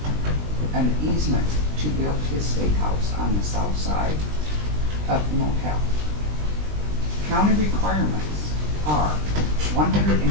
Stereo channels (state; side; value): late; left; 20 ms